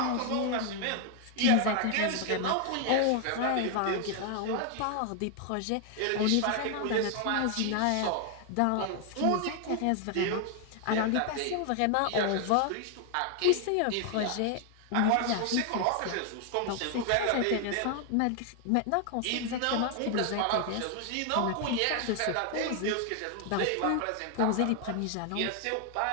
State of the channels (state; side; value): different; both; correlation 0.00